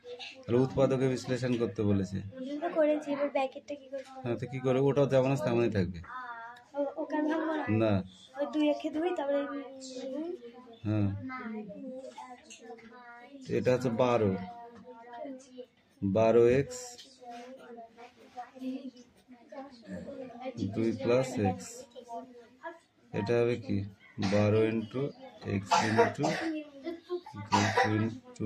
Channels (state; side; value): identical; both; correlation 1.00